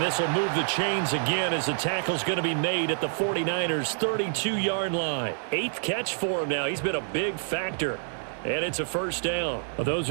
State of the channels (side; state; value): left; silent; digital silence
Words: this will move the chains again as the tackle's going to be made at the 49ers' 32-yard line. 8th catch for him now. He's been a big factor. And it's a first down. Well, those